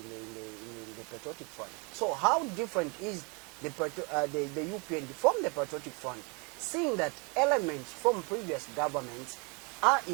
Patriotic Front. So how different is the UPND from the Patriotic Front, seeing that elements from previous governments are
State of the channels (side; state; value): left; quieter; 31.6 dB